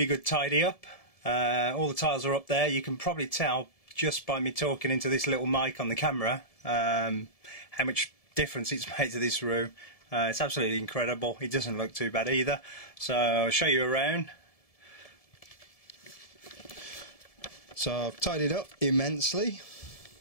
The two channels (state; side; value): late; right; 1.7 ms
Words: good tidy up. All the tiles are up there. You can probably tell just by me talking into this little mic on the camera how much difference it's made to this room. It's absolutely incredible. It doesn't look too bad either. So I'll show you around. So I've tidied up immensely.